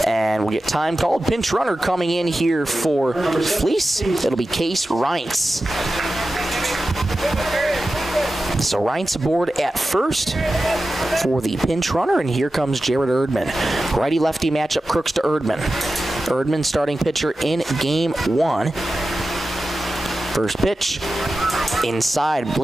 And we'll get time called. Pinch runner coming in here for Fleece. It'll be Case Reintz. So Reintz aboard at first for the pinch runner, and here comes Jared Erdman. Righty-lefty matchup, Crooks to Erdman. Erdman starting pitcher in Game 1. First pitch, inside,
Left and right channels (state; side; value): normal; both; correlation 0.93